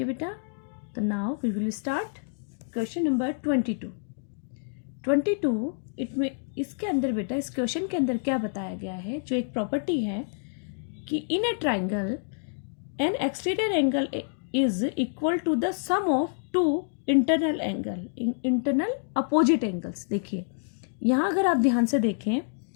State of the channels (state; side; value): silent; right; digital silence